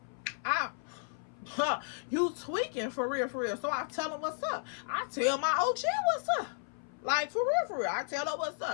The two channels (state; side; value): silent; right; 55 dB below the other